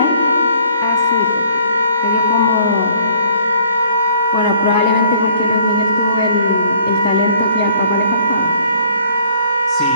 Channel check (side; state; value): both; inverted; correlation -0.58